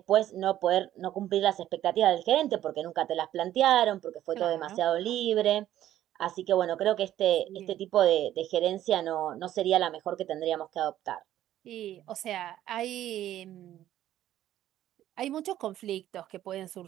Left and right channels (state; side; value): quieter; left; 12.6 dB